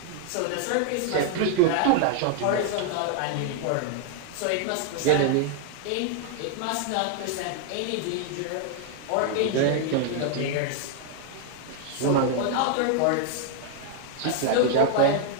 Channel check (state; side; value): different; both; correlation 0.00